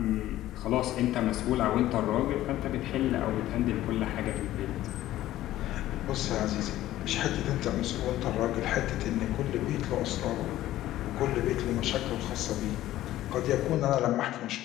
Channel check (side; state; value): right; quieter; 14.5 dB